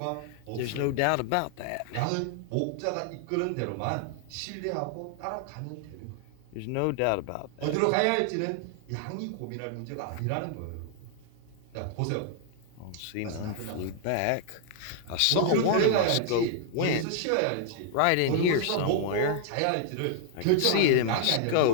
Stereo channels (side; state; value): both; different; correlation 0.00